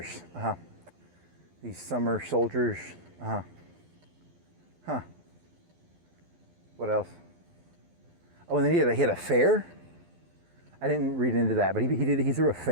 These summer soldiers. What else? Oh, and then he had a fair. I didn't read into that, but he threw a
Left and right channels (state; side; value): late; left; 12 ms